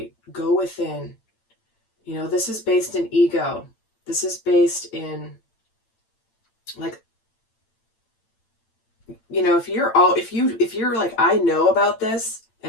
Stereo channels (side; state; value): right; late; 8.9 ms